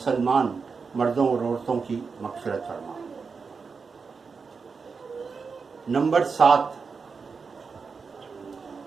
مردوں اور عورتوں کی مغفرت فرما. نمبر 7،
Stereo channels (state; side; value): quieter; left; 5.1 dB